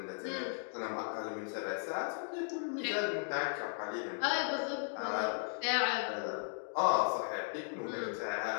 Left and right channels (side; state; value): right; silent; digital silence